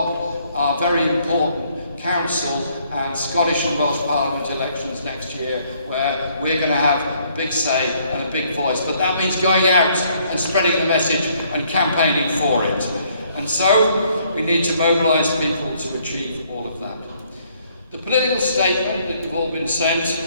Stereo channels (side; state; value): both; inverted; correlation -0.66